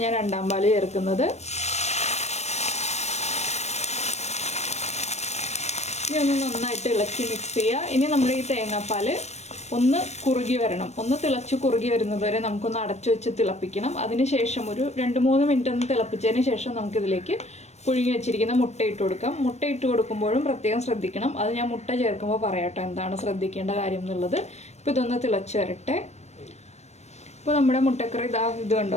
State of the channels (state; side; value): late; right; 0.32 ms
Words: ഞാൻ 2ാം പാല് ചേർക്കുന്നത്. ഇനി ഒന്ന് നന്നായിട്ട് ഇളക്കി മിക്സ് ചെയ്യുക. ഇനി നമ്മുടെ ഈ തേങ്ങാപ്പാൽ ഒന്ന് കുറുകി വരണം. ഒന്ന് തിളച്ച് കുറുകി വരുന്നത് വരെ നമുക്കൊന്ന് അടച്ചു വെച്ച് തിളപ്പിക്കണം. അതിനുശേഷം ഒരു 2-3 മിനിറ്റ് ഒന്ന് തിളപ്പിച്ചതിന് ശേഷം നമുക്കിതിലേക്ക് പുഴുങ്ങി വെച്ചിരിക്കുന്ന മുട്ട ഇട്ട് കൊടുക്കാം. മുട്ട ഇട്ട് കൊടുക്കുമ്പോഴും പ്രത്യേകം ശ്രദ്ധിക്കണം. അത് ഞാൻ മുട്ട ചേർക്കുമ്പോൾ പറയാട്ടോ എന്താണ് ശ്രദ്ധിക്കേണ്ട കാര്യം എന്നുള്ളത്. ഇപ്പോൾ ഇതൊന്ന് തിളച്ച് വരട്ടെ. ഇപ്പോൾ നമ്മുടെ മുട്ടക്കറി ഇത്